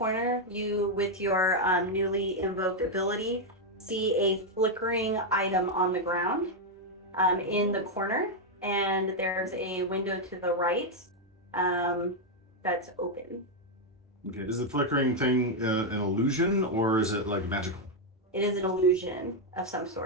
you, with your newly invoked ability, see a flickering item on the ground in the corner, and there's a window to the right that's open. Okay, is the flickering thing an illusion or is it like magical? It is an illusion of some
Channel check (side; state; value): both; normal; correlation 0.01